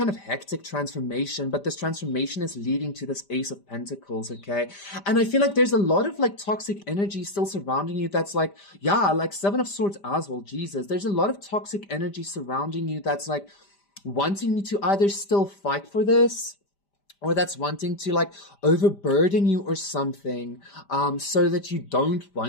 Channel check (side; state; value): right; late; 5.0 ms